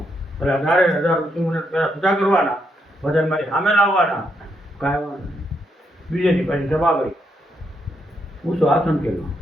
એટલે 18,000 ઋષિમુનિ પેલા પૂજા કરવાના, બધા મારી સામે લાવવાના, ગાયવાના. બીજેથી પાછી સભા કરી ઊંચો આસન કર્યો.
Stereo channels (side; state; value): both; normal; correlation 0.78